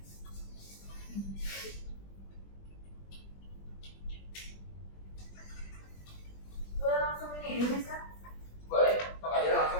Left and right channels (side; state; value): right; late; 20 ms